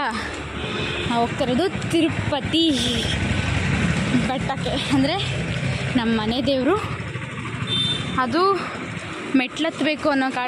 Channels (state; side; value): identical; both; correlation 1.00